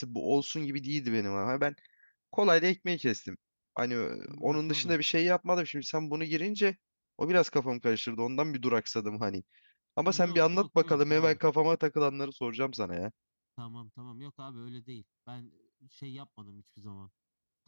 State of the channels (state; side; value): inverted; both; correlation -1.00